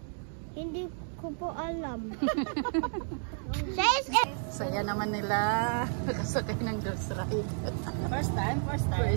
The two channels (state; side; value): silent; left; 57 dB below the other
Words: Hindi ko po alam. Saya naman nila. Nakasakay ng Dos Ride. First time. First